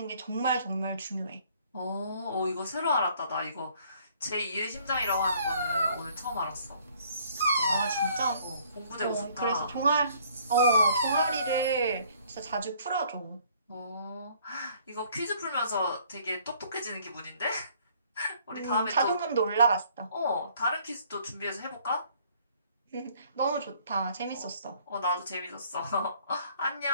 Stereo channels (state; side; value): inverted; both; correlation -0.60